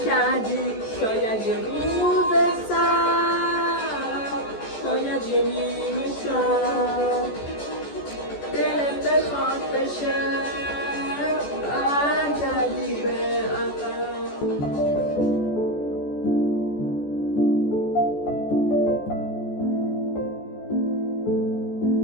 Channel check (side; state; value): right; late; 14 ms